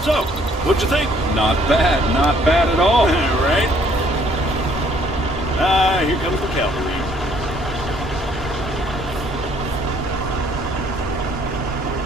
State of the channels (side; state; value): both; normal; correlation 0.63